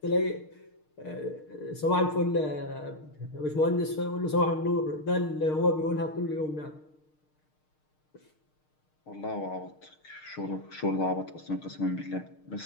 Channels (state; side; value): late; right; 6.5 ms